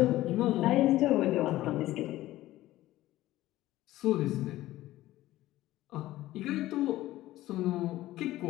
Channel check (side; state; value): right; quieter; 15.8 dB